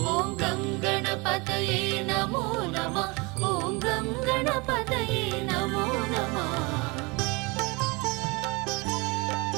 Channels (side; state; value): left; quieter; 27.0 dB